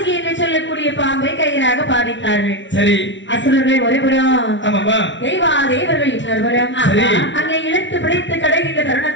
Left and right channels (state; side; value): late; right; 0.54 ms